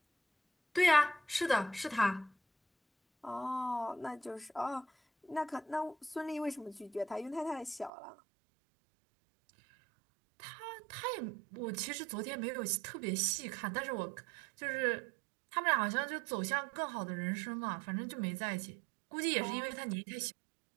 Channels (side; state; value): left; drops out; at 7.9 s